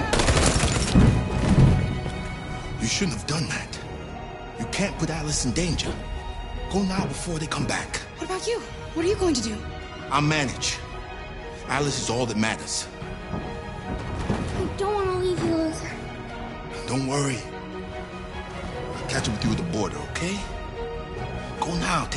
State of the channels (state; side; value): identical; both; correlation 1.00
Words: You shouldn't have done that. You can't put Alice in danger. Go now before they come back. What about you? What are you going to do? I'll manage. Alice is all that matters. I don't want to leave you, Luther. Don't worry. I'll catch up with you at the border, okay? Go now.